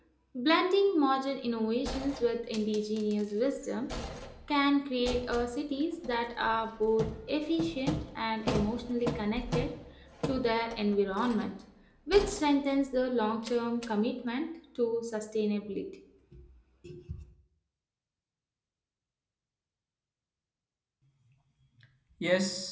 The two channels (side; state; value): both; identical; correlation 1.00